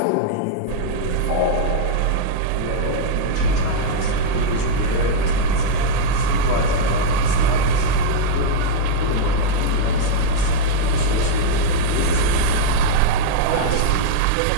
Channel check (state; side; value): different; both; correlation -0.02